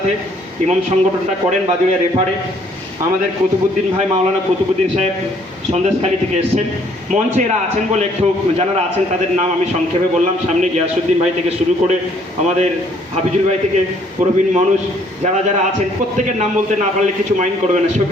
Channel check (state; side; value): normal; both; correlation 0.63